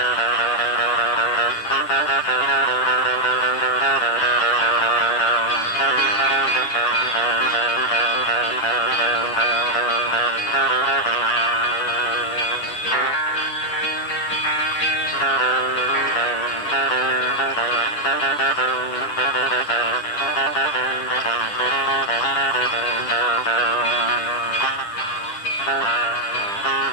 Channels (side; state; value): right; late; 10 ms